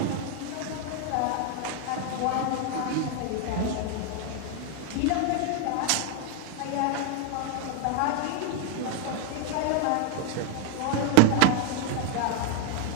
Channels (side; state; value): both; different; correlation 0.00